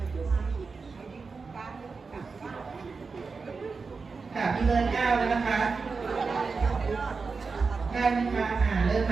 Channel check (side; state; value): left; quieter; 4.6 dB